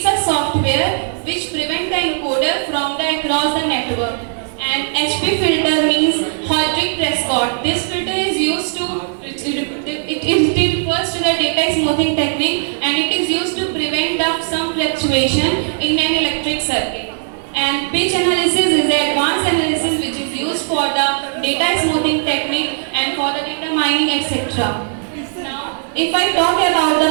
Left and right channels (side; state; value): left; silent; 64 dB below the other